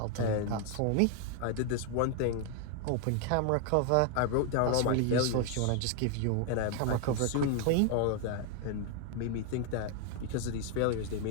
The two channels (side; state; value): both; different; correlation 0.00